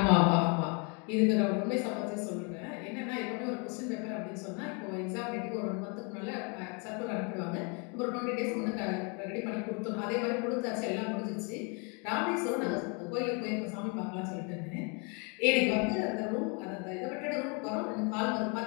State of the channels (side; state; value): right; quieter; 34.2 dB